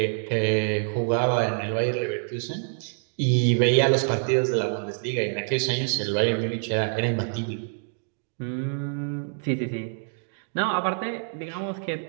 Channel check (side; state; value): left; silent; digital silence